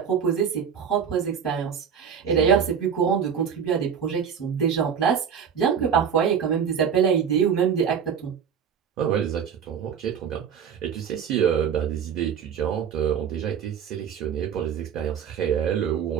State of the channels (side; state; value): left; quieter; 7.6 dB